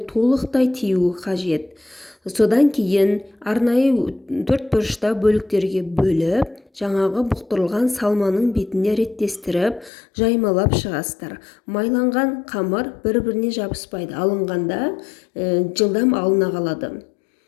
толықтай тиюі қажет. Содан кейін арнайы төрт бұрышта бөліктерге бөліп, жаңағы бұқтырылған салманың бетіне реттестіріп, жаймалап шығасыздар. Майланған қамыр бір-біріне жабыспайды. Алынғанда жылдам алына қалады.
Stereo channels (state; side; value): drops out; right; at 9.9 s